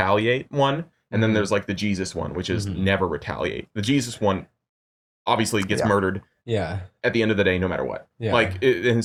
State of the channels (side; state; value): both; identical; correlation 1.00